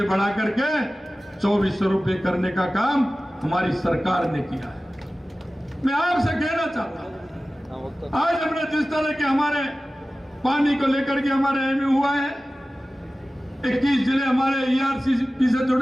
बढ़ा करके 2400 रुपए करने का काम हमारी सरकार ने किया है। मैं आपसे कहना चाहता हूं, आज हमने जिस तरह के हमारे पानी को लेकर के हमारे एमयू हुआ है, 21 जिले हमारे ईआरसीपी से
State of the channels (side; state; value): both; normal; correlation 0.96